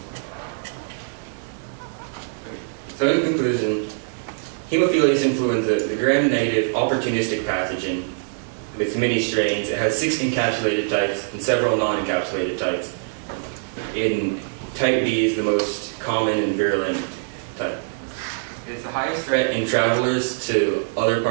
So in conclusion, Haemophilus influenza, the gram-negative opportunistic pathogen with many strains. It has 6 encapsulated types and several non-encapsulated types. In type B is the most common and virulent type. It's the highest threat in travelers to other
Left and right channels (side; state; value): left; silent; digital silence